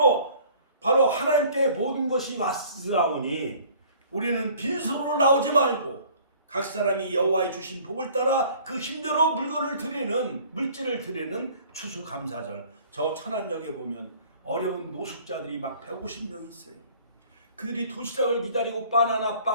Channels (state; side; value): inverted; both; correlation -0.52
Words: 바로 하나님께 모든 것이 왔사오니 우리는 빈소로 나오지 말고 각 사람이 여호와의 주신 복을 따라 그 힘대로 물건을 드리는, 물질을 드리는 추수감사절. 저 천안역에 보면 어려운 노숙자들이 막 150명 있어요. 그들이 도시락을 기다리고 바나나